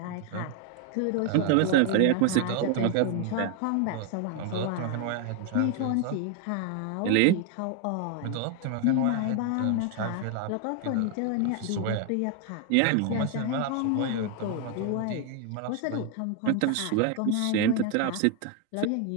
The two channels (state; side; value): different; both; correlation 0.00